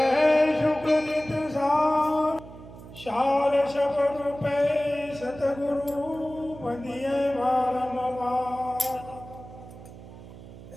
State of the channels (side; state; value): right; noise; hum, 16 dB below the sound